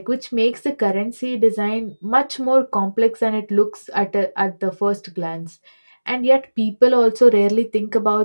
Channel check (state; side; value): inverted; both; correlation -1.00